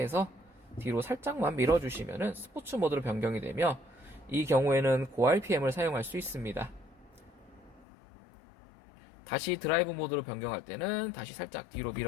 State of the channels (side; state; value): right; drops out; at 7.9 s